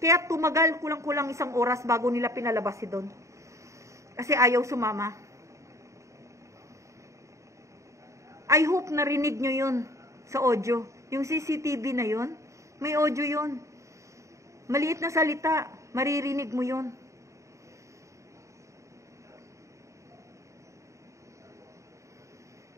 tumagal kulang-kulang 1 oras bago nila pinalabas si Don. Kasi ayaw sumama. I hope narinig nyo yun sa audio. Yung CCTV na yun, may audio yun. Maliit na salita, maririnig mo yun.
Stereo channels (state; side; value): late; left; 0.15 ms